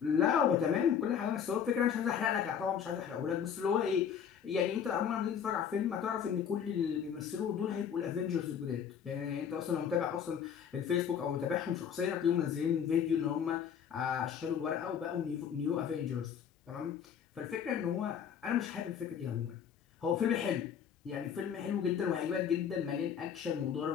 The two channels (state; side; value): quieter; right; 8.0 dB